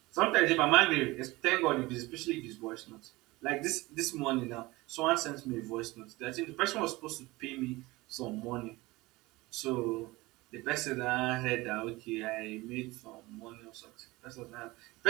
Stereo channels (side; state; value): left; quieter; 21.1 dB